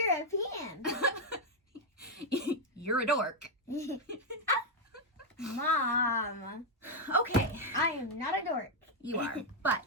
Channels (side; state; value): both; normal; correlation 0.01